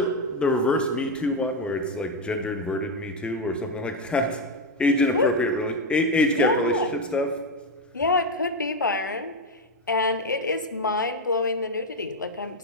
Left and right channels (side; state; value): both; normal; correlation 0.08